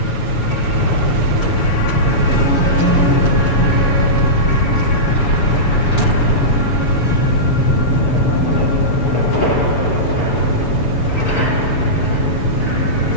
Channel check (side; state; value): right; late; 7.0 ms